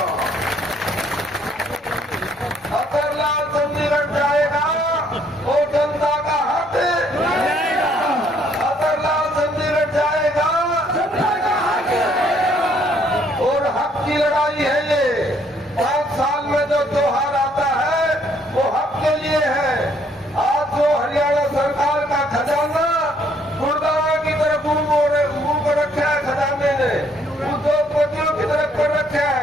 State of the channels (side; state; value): both; normal; correlation 0.66